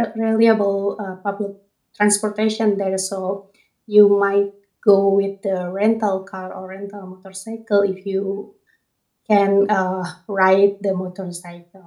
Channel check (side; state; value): both; identical; correlation 1.00